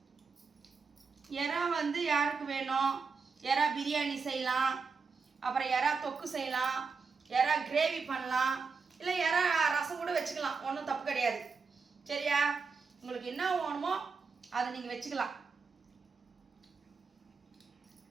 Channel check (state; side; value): quieter; left; 5.0 dB